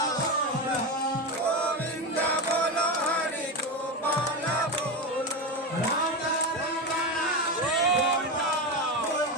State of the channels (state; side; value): normal; both; correlation 0.16